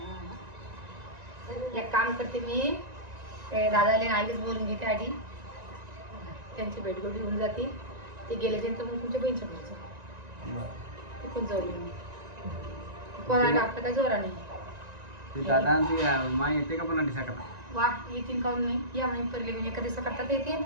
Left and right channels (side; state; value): left; late; 1.9 ms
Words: एक काम करते मी ते दादाला आधीच बोलून घेते आधी त्यांची भेटगोटी होऊन जाते ते गेल्याच्यानंतर मग तुमच्या बहिणीच्या घरचं तिथून जाऊ मी कोणाला आपलं काय जोरा नाही ते दादा आणि ती माय येते का पण दिसा करता वा येतील काऊन नाही या म्हणे पहिले म्हणजे एका दिवसा करतात येते